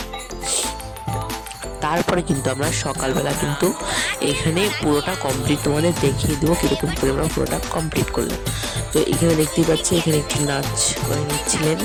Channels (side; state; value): both; identical; correlation 1.00